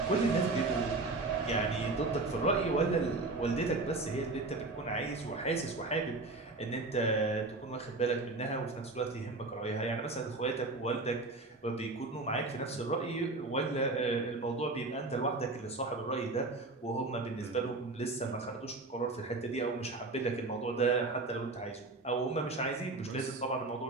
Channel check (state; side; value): quieter; left; 3.2 dB